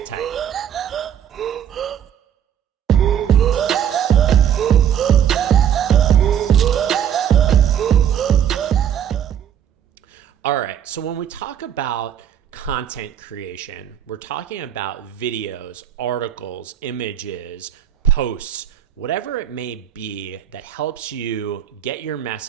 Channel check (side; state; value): left; quieter; 9.4 dB